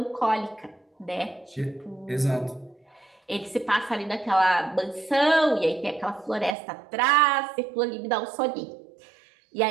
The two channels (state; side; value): drops out; left; at 6.6 s